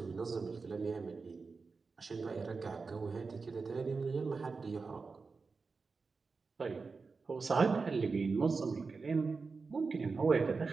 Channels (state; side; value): quieter; left; 4.5 dB